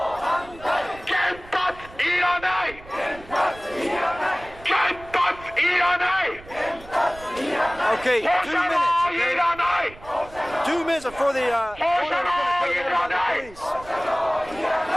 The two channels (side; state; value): right; noise; rumble, 19 dB below the sound